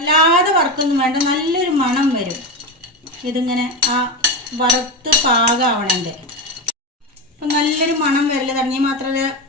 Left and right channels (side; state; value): both; normal; correlation 0.17